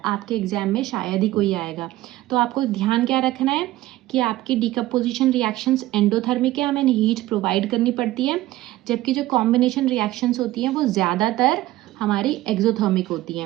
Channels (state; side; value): quieter; left; 16.5 dB